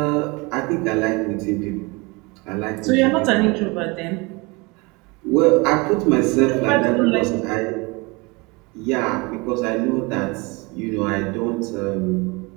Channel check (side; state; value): left; quieter; 26.2 dB